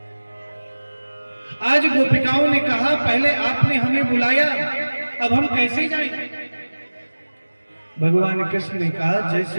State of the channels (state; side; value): inverted; both; correlation -1.00